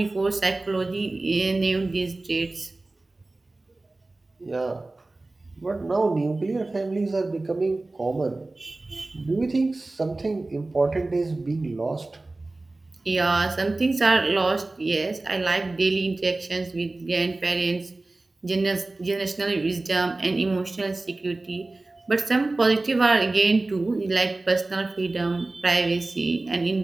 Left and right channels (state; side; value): quieter; left; 3.1 dB